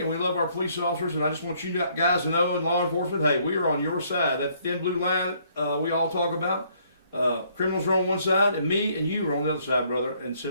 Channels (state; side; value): inverted; both; correlation -0.66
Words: and we love our police officers. And I just want you guys to know in law enforcement, hey, we are on your side. That thin blue line we all talk about. Criminals are on one side, and me and you are on the other side, brother and